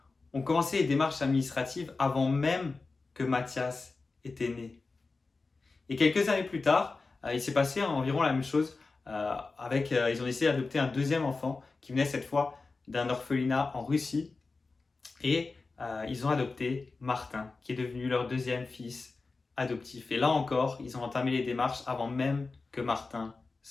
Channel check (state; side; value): quieter; right; 3.9 dB